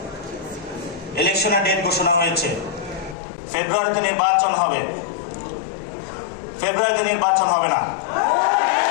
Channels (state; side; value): drops out; right; at 3.2 s